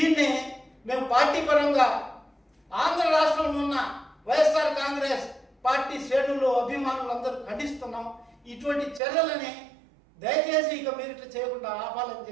మేము పార్టీ పరంగా ఆంధ్ర రాష్ట్రంలో ఉన్న వైఎస్ఆర్ కాంగ్రెస్ పార్టీ శ్రేణులు అభిమానులు అందరూ ఖండిస్తున్నాం. ఇటువంటి చర్యలని దయచేసి ఇక మీరు ఇట్లా చేయకుండా ఆపాలని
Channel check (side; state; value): left; drops out; at 9.0 s